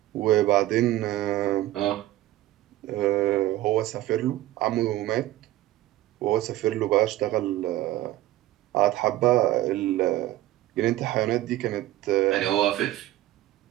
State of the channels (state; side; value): quieter; left; 15.3 dB